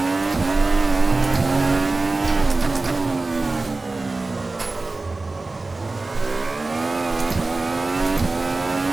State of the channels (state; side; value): quieter; left; 3.4 dB